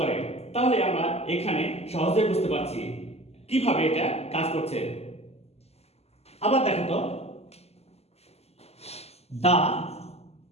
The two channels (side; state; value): right; late; 0.30 ms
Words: তাহলে আমরা এখানে সহজে বুঝতে পারছি কিভাবে এটা কাজ করছে। আবার দেখো তো, the